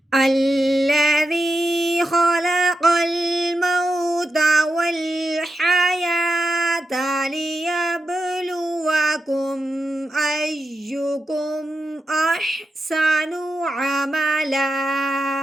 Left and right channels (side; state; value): both; normal; correlation 0.88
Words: الذي خلق الموت والحياة ليبلوكم أيكم أحسن عملا